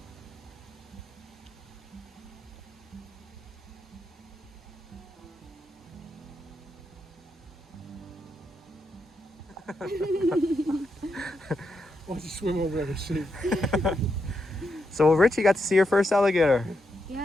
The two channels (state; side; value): normal; both; correlation 0.83